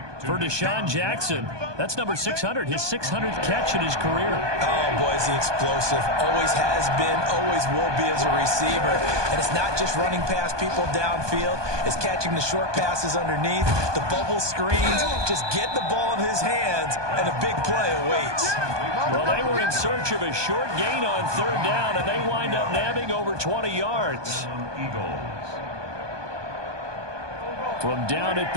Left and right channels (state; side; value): late; left; 1.2 ms